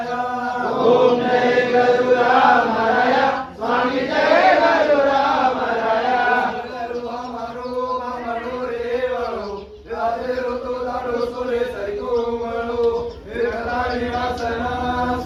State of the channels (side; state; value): both; identical; correlation 1.00